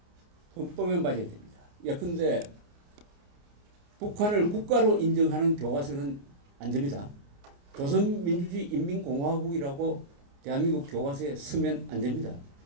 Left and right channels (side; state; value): left; late; 29 ms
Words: 헌법에 맞아야 됩니다. 예컨대 북한을 국가로 인정하는 교과서는 안 됩니다. 조선민주주의 인민공화국이라고 대한민국 교과서에 쓰면 안 됩니다.